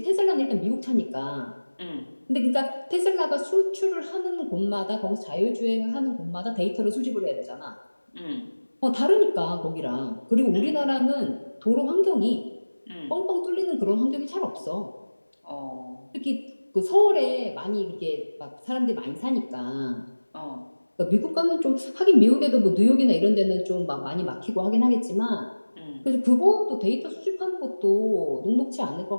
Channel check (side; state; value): both; inverted; correlation -1.00